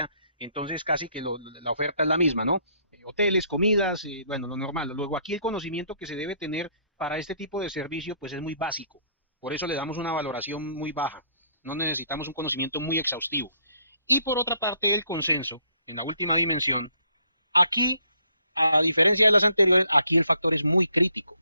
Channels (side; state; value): both; inverted; correlation -0.67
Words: Entonces casi que la oferta es la misma, ¿no? Hoteles, comidas, bueno, lo normal. Luego aquí el conocimiento que se debe tener para este tipo de servicio pues es muy básico. Por eso le damos una valoración muy baja. No necesitamos un conocimiento muy exhaustivo. Y por otra parte, el consenso, en la última dimensión, aquí, a diferencia de las anteriores, aquí el factor es muy crítico.